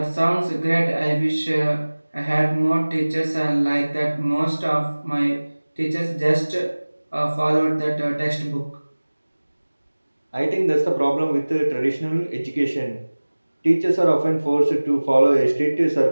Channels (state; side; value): inverted; both; correlation -1.00